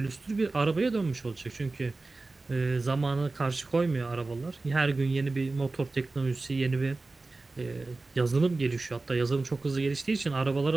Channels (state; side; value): quieter; left; 3.4 dB